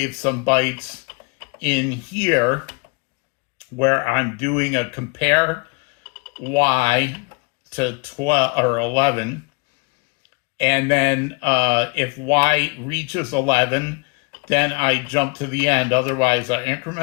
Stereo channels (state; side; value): quieter; right; 31.4 dB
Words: some bytes in here where I'm doing a compare Y to 12 or 11, and then if Y reaches 11, then I jump to the end. Otherwise, I